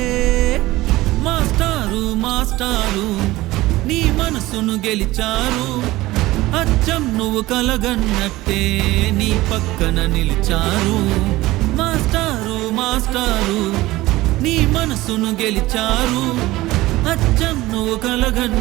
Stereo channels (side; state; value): left; quieter; 18.2 dB